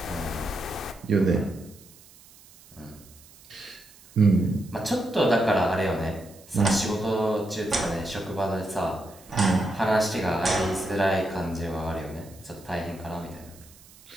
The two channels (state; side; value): noise; right; hiss, 24 dB below the sound